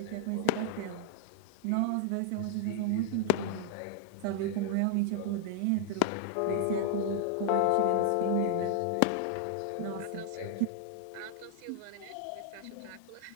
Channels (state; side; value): different; both; correlation -0.01